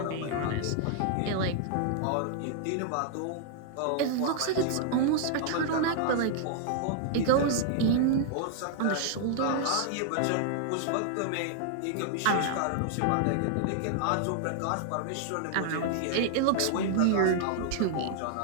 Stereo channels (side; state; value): both; different; correlation -0.01